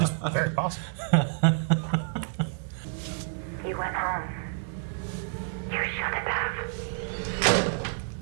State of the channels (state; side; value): silent; left; digital silence